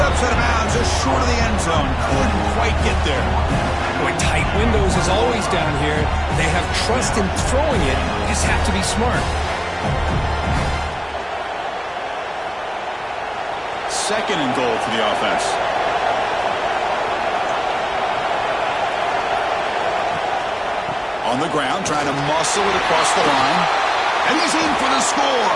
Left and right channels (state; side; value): identical; both; correlation 1.00